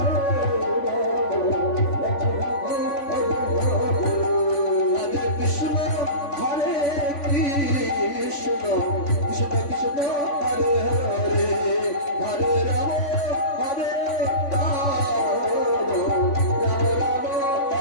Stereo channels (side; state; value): right; late; 3.5 ms